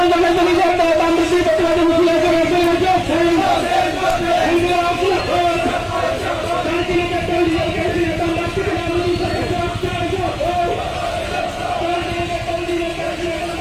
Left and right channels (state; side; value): identical; both; correlation 1.00